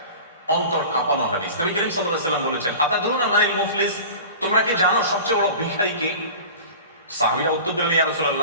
অন্তর কাঁপানো হাদিস। নবী করিম সাল্লাল্লাহু আলাইহি ওয়াসাল্লাম বলেছেন, আতাদরুনা মানিল মুফলিস, তোমরা কি জানো সবচেয়ে বড় ভিখারি কে? সাহাবীরা উত্তর দিলেন, ইয়া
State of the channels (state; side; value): inverted; both; correlation -0.37